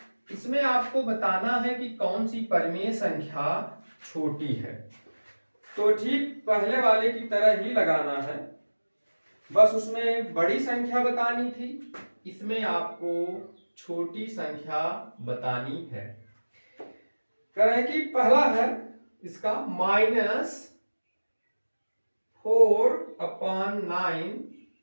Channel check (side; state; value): both; inverted; correlation -1.00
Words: इसमें आपको बताना है कि कौन सी परिमेय संख्या छोटी है। तो ठीक पहले वाले की तरह ही लगाना है, बस उसमें बड़ी संख्या बतानी थी, इसमें आपको छोटी संख्या बतानी है। कह रहे हैं कि पहला है इसका -4/9